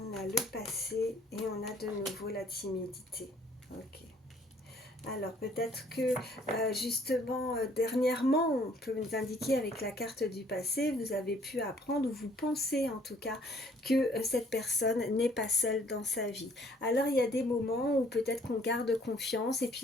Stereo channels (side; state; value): both; normal; correlation 0.61